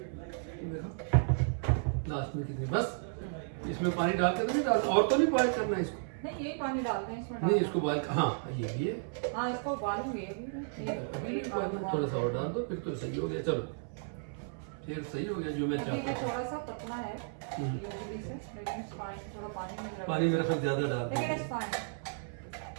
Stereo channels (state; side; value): silent; left; 55 dB below the other